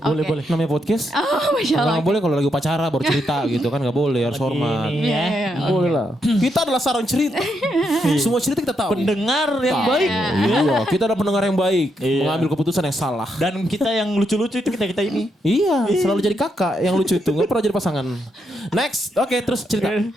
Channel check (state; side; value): normal; both; correlation 0.80